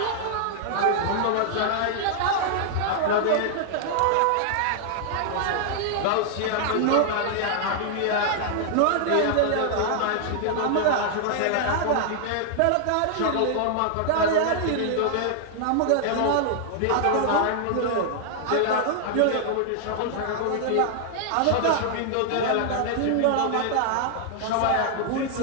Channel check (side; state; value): both; different; correlation -0.01